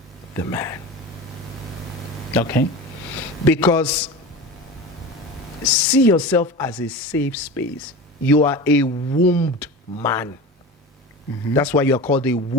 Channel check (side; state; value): both; normal; correlation 0.30